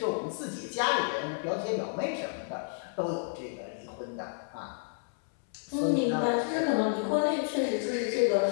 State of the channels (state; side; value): silent; right; 57 dB below the other